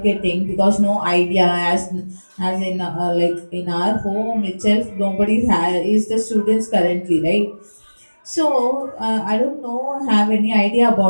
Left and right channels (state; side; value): inverted; both; correlation -1.00